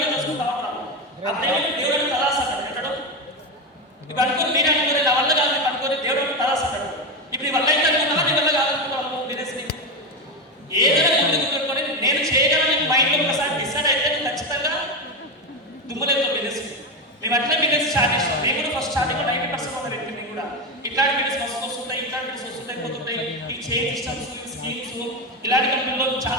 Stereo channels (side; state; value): both; normal; correlation 0.13